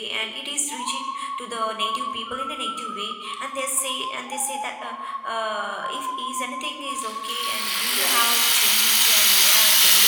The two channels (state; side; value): identical; both; correlation 1.00